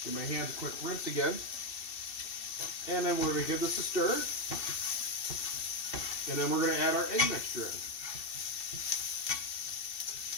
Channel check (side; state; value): right; late; 2.6 ms